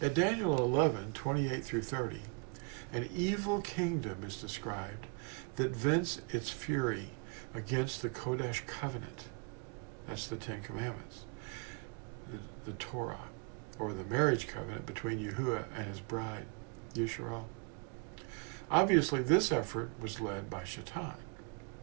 At Daniel 11, 28 through 30, an evil kingdom is described that vents its fury against the Kodesh covenant. That's the Ten Commandments. The Torah, or the marriage covenant between Yahuwah and his bride, Yisrael. Obviously, this effort was led by Shaitan.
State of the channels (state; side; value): quieter; left; 34.6 dB